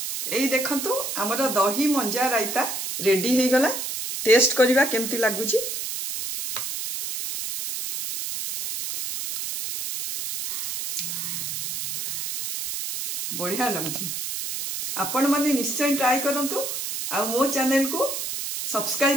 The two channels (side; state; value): right; noise; hiss, 4 dB below the sound